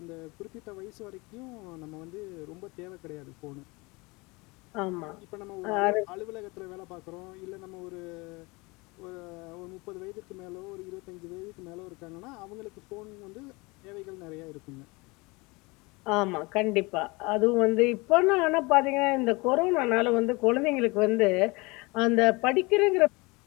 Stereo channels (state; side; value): quieter; right; 25.5 dB